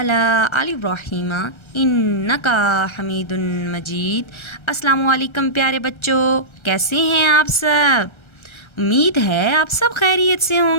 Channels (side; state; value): right; late; 1.3 ms